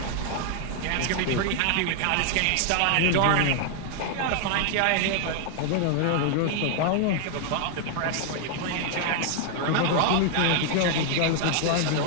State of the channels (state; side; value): different; both; correlation 0.00